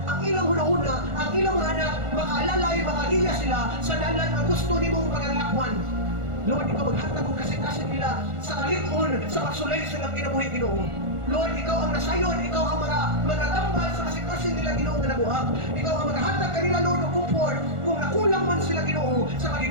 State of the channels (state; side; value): late; left; 1.4 ms